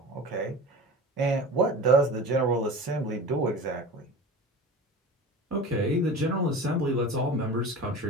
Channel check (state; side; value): normal; both; correlation 0.35